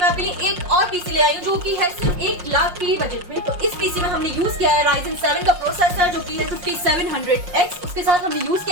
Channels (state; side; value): late; left; 5.6 ms